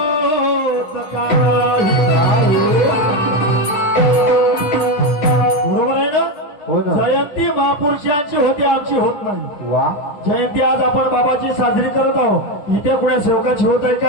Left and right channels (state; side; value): late; right; 10 ms